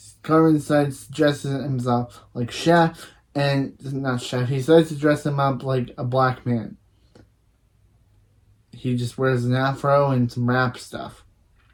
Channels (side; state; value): both; identical; correlation 1.00